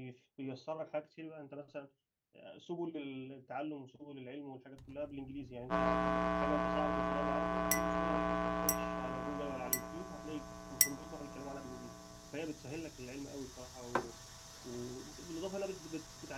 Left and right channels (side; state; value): both; identical; correlation 1.00